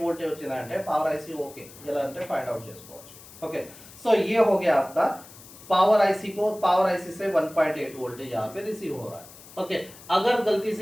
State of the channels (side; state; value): left; noise; hiss, 19 dB below the sound